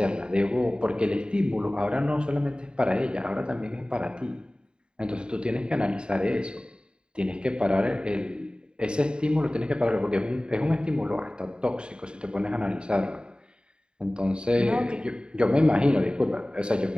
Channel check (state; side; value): late; left; 0.050 ms